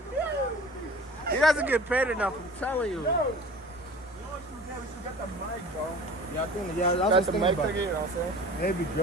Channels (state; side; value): normal; both; correlation 0.42